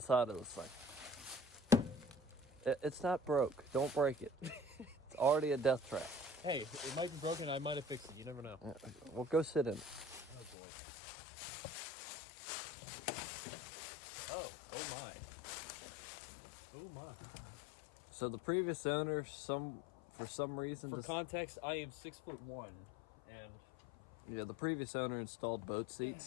of this thing. It's not broke. Don't break it. It's already a death trap. Hey, it might be broken. I might have fixed it. You never know. Well, go sit in it. Oh boy. Oh my. Oh my. So the previous owner, for some reason, For context, I am 6'1", and yeah, the previous owner installed boat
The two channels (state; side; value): drops out; right; at 10.6 s